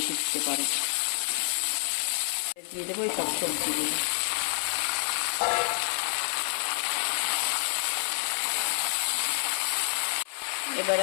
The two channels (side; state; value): right; silent; 56 dB below the other